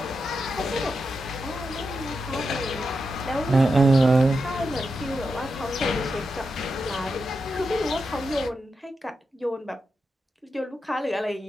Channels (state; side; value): normal; both; correlation 0.87